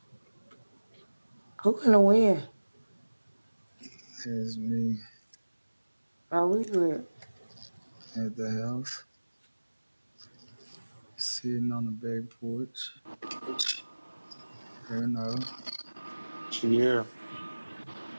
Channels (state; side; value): inverted; both; correlation -1.00